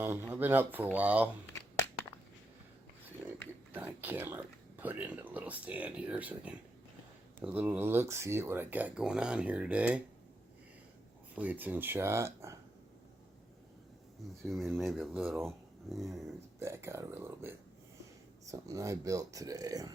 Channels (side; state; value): both; normal; correlation 0.83